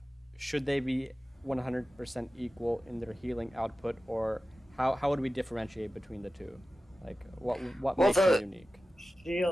Should they be 100% equal in their healing output, or how would we differentiate between the two? Like, what Well, makes them unique?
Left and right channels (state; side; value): normal; both; correlation 0.95